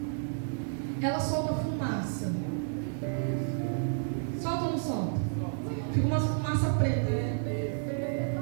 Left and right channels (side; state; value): left; silent; digital silence